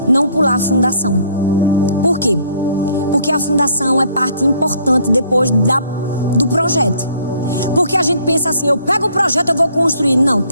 não pular a fundação. Por quê? Porque a fundação é parte importante depois do projeto. Porque a gente pensa assim: eu pego o projeto, eu vou construir. Não,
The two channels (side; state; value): both; inverted; correlation -0.62